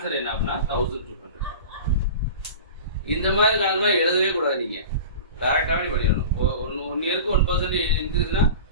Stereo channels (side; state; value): both; inverted; correlation -0.35